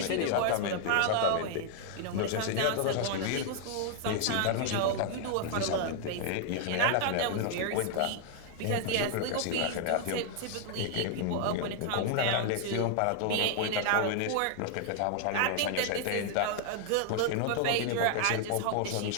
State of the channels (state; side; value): different; both; correlation 0.00